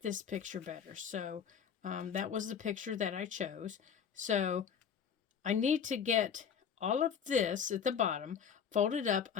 this picture better. So that was the picture that I chose. So I need to get all of this at the bottom folded up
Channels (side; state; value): right; quieter; 7.4 dB